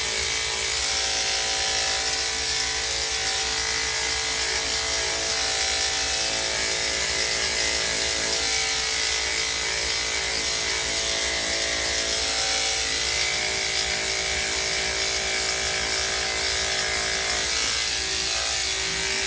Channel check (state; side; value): identical; both; correlation 1.00